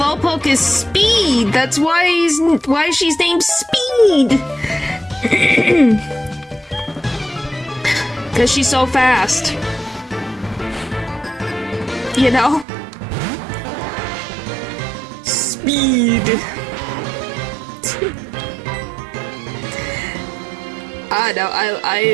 is speed. That's why she's named Speed. Cause she's so fast. You know? Speed. No,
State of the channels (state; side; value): drops out; left; at 12.7 s